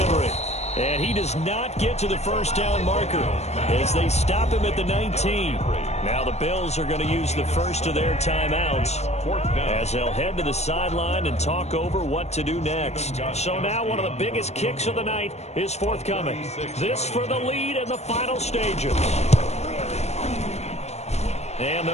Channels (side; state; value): right; late; 0.32 ms